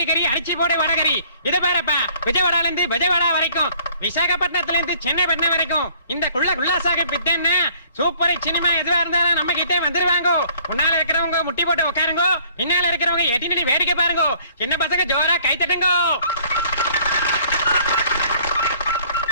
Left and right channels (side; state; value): both; inverted; correlation -0.57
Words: அரிசி போடு வடகரி. இத பாருப்பா, விஜயவாடால இருந்து விஜயவாடா வரைக்கும், விசாகப்பட்டினத்துல இருந்து சென்னைப்பட்டினம் வரைக்கும் இந்த குல்லாசாக பித்தன்னா சூப்பர் சினிமா எதுவா இருந்தாலும் நம்ம கிட்டே வந்துருவாங்க. முன்னால இருக்கிறவங்க முட்டி போட்டு உட்காருங்க, பின்னால இருக்கிறவங்க எட்டி நின்னு வேடிக்கை பாருங்க. சின்ன பசங்க ஜோரா கை தட்டுங்க.